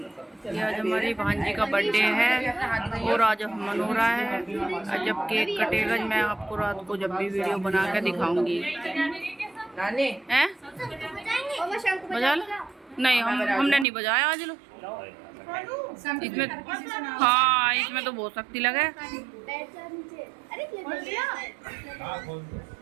आज हमारी भांजी का बर्थडे है और आज मना रहा है। जब केक कटेगा मैं आपको रात को जब भी वीडियो बना के दिखाऊंगी। हैं? बजा लो? नहीं, हमने नहीं बजाया आज। लो इसमें, हाँ इसमें तो बहुत शक्ति लगे।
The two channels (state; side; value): drops out; left; at 13.9 s